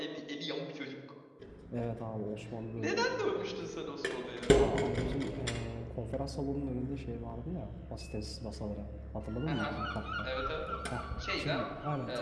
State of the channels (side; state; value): both; identical; correlation 1.00